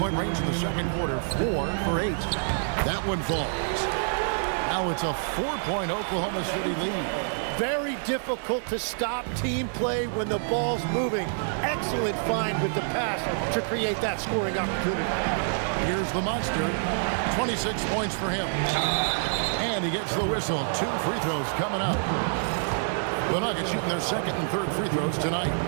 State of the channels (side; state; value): left; silent; digital silence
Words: range in the second quarter. 4 for 8. That one falls. Now it's a 4-point Oklahoma City lead. Very difficult to stop team play when the ball's moving. Excellent find with the pass to create that scoring opportunity. Here's the monster. 26 points for him. And he gets the whistle. 2 free throws coming up. The Nuggets shooting their second and third free throws tonight.